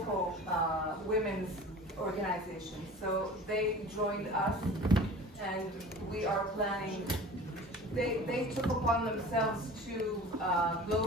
women's organizations. So they joined us and we are planning. They took upon themselves to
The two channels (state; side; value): normal; both; correlation 0.40